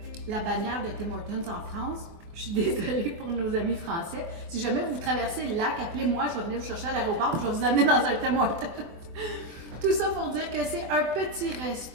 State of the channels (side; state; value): left; late; 24 ms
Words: la bannière de Tim Hortons en France. Je suis désolée pour nos amis français. Si jamais vous traversez le lac, appelez-moi, je vais venir vous chercher à l'aéroport, je vais vous amener dans un Tim Hortons. Tout ça pour dire que c'est un petit